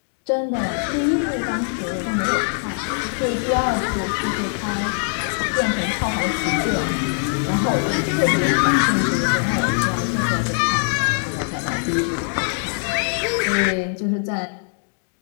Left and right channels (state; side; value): silent; right; 64 dB below the other